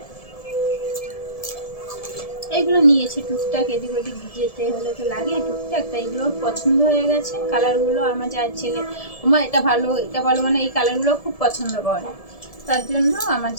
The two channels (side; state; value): right; late; 1.7 ms